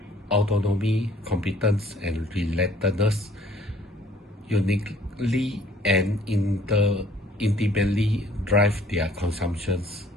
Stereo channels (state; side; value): normal; both; correlation 0.58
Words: autonomy, competence, and relatedness uniquely and intimately drive their consumptions,